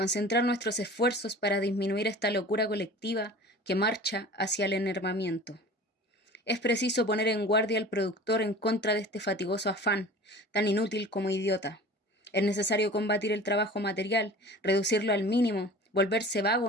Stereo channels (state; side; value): normal; both; correlation 0.40